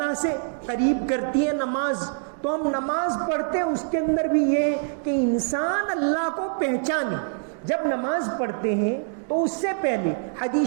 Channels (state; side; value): silent; left; digital silence